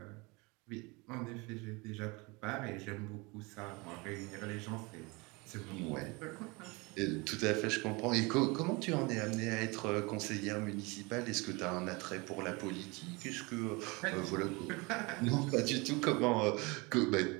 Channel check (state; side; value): quieter; left; 26.5 dB